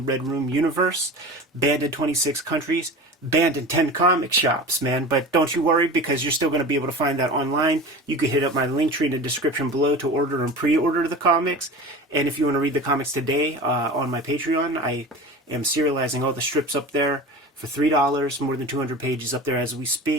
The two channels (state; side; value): normal; both; correlation 0.33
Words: Red Room universe. Banned in 26 countries, banned in 10 comic shops, man. But don't you worry, because you're still going to be able to find that online. You can hit up my link tree in the description below to order and pre-order the comics. And if you want to read the comics today on my Patreon, I am serializing all the strips up there for $3, more than 200 pages up there as we